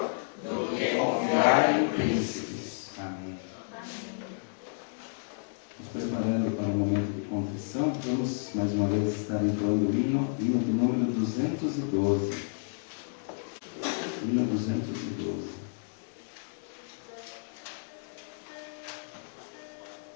do que confiar em príncipes. Amém. Nos preparando para o momento de confissão, vamos mais uma vez estar entoando o hino de número 212. Hino 212.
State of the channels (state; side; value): silent; right; digital silence